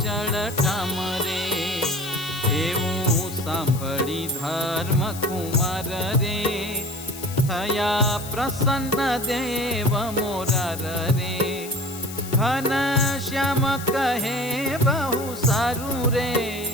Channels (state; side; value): noise; left; hiss, 12 dB below the sound